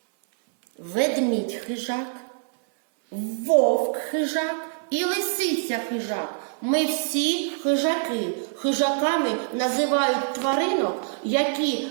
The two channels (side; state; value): left; silent; digital silence